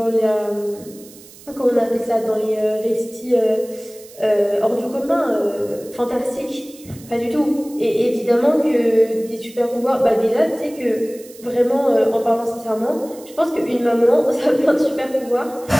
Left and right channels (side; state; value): right; noise; hiss, 21 dB below the sound